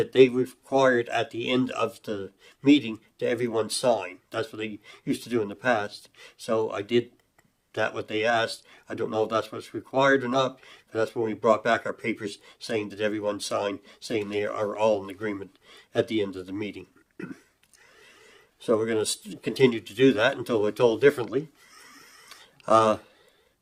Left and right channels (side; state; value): both; identical; correlation 1.00